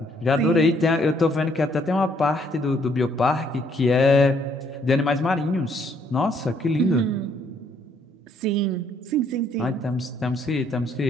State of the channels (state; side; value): normal; both; correlation 0.67